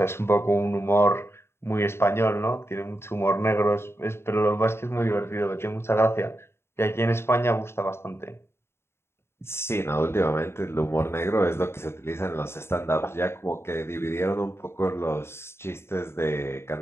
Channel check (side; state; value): right; late; 0.12 ms